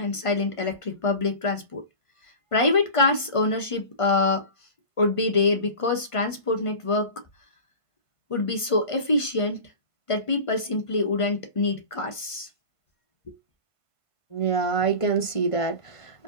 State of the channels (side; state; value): right; late; 1.5 ms